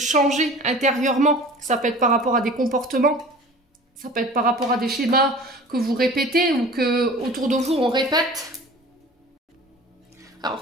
intérieurement. Ça peut être par rapport à des comportements, ça peut être par rapport à des schémas que vous répétez ou que autour de vous on répète.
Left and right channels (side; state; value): both; normal; correlation 0.42